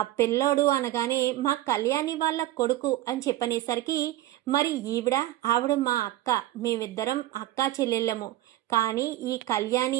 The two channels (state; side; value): quieter; left; 15.1 dB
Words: పిల్లోడు అనగానే మా కళ్యాణి వాళ్ళ కొడుకు అని చెప్పనేసరికి మరి ఆవిడ మా అక్క, మేమిద్దరం అక్కా చెల్లెళ్ళము, కానీ ఈ